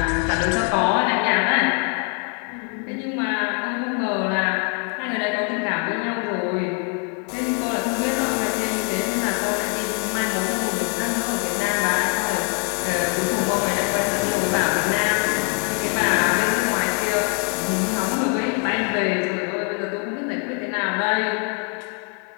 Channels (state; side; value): quieter; right; 37.4 dB